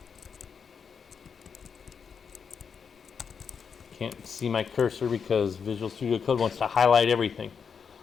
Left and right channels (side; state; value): right; quieter; 6.4 dB